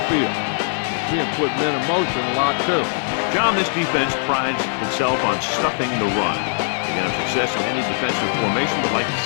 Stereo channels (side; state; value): right; silent; digital silence